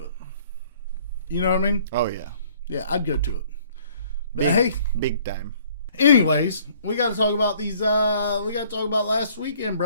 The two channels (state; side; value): inverted; both; correlation -0.58